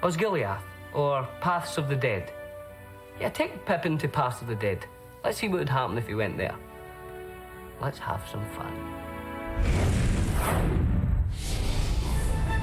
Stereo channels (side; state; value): both; identical; correlation 1.00